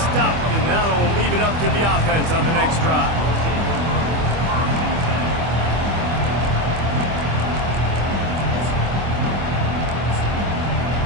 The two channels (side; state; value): left; late; 25 ms